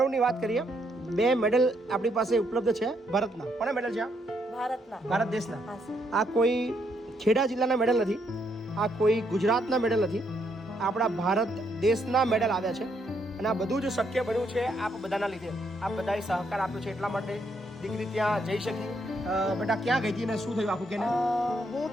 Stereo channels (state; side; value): normal; both; correlation 0.75